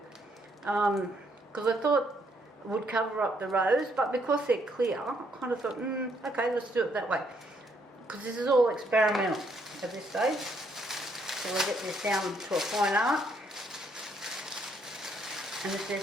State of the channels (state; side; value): normal; both; correlation 0.71